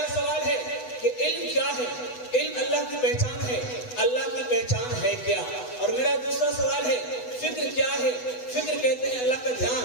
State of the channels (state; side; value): late; right; 8.1 ms